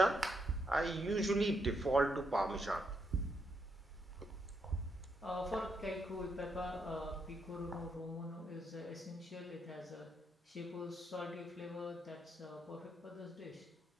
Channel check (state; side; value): normal; both; correlation 0.79